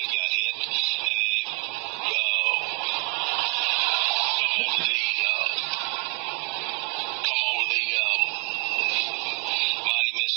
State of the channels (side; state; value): left; quieter; 29.5 dB